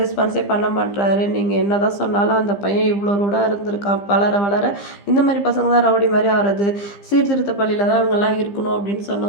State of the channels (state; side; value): late; right; 15 ms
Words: பண்ண மாட்றாரு. நீங்கள் என்ன தான் சொன்னாலும் அந்த பையன் இவ்வளோ ரூடாக இருந்திருக்கான். வளர வளர இந்த மாதிரி பசங்க தான் ரவுடி மாதிரி ஆகிறது. சீர்திருத்த பள்ளியில் தான் அவங்கெல்லாம் இருக்கணும் அப்படின்னு